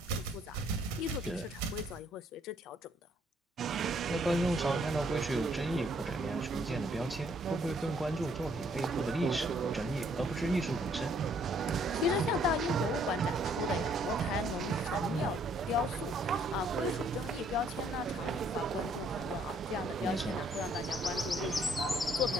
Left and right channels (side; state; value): both; normal; correlation 0.66